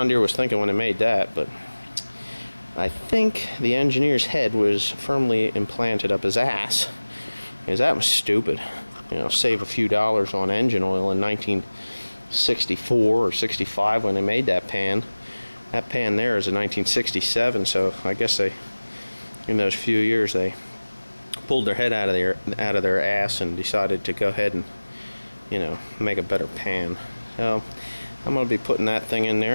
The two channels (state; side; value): inverted; both; correlation -1.00